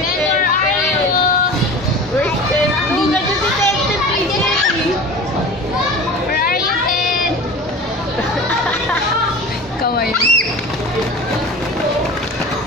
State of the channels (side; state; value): both; normal; correlation 0.36